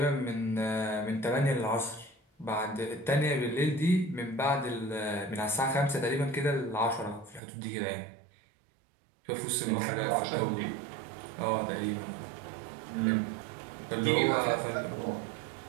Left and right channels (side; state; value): left; drops out; at 7.4 s